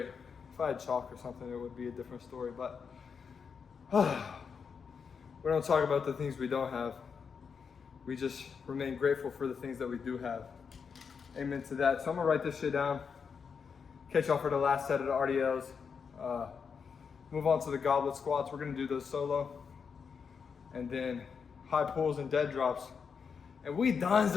If I had chalk or something, it would be a different story, but we don't talk about the things we don't have. We just remain grateful for the things that we do have. Amen to that. So I'm gonna write this shit down. Catch y'all for the last set of the RDLs. Move on to the goblet squats. We're gonna do those solo. And then high pulls and dead drops. And we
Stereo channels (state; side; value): quieter; right; 6.1 dB